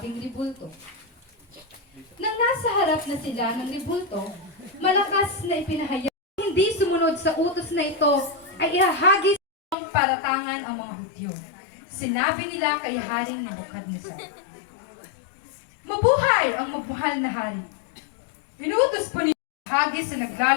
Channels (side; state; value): right; drops out; at 9.8 s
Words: ribulto. Nang nasa harap na sila ng ribulto, malakas na ipinahayag hindi sumunod sa utos na ito ay ihahagis ang paratangan ang mga Hudyo. Sinabi nila kay Haring Nebuchadnezzar, "Mabuhay ang mabuhal na hari! Inuutos po ninyo hagis sa